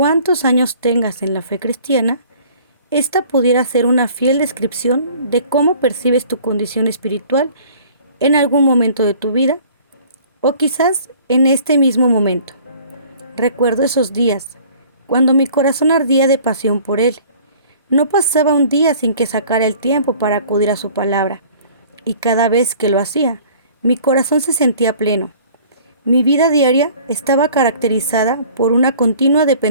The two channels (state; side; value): inverted; both; correlation -0.51